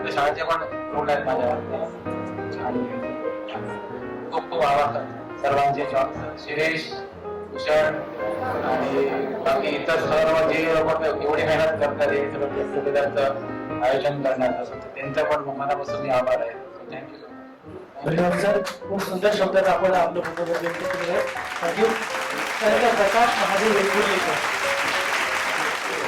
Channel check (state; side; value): identical; both; correlation 1.00